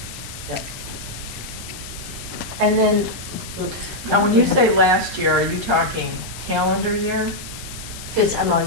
And then, oops. Now, when you say last year, are you talking calendar year? I'm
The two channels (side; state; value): left; noise; hiss, 13 dB below the sound